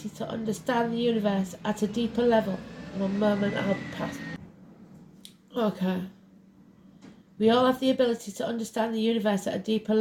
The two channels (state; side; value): identical; both; correlation 1.00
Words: to understand the universe at a deeper level. One moment, I'll pass. Okay. We all have the ability to understand the universe at a deeper